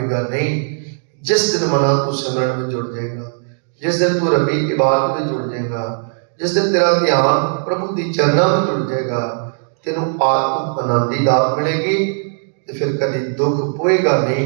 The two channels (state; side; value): silent; left; digital silence